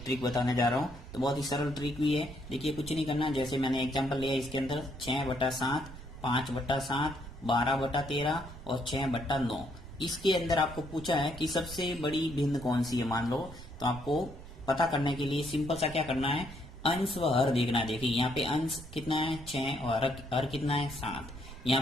ट्रिक बताने जा रहा हूँ। तो बहुत ही सरल ट्रिक भी है। देखिए, कुछ नहीं करना, जैसे मैंने एग्जाम्पल लिया इसके अंदर 6/7, 5/7, 12/13 और 6/9। इसके अंदर आपको पूछा है कि सबसे बड़ी भिन्न कौन सी है, मान लो। तो आपको पता करने के लिए सिंपल सा क्या करना है, अंश व हर देखना है। देखिए, यहाँ पे अंश कितना है 6 और हर कितना है 7। यहाँ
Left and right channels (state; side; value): noise; right; rumble, 14 dB below the sound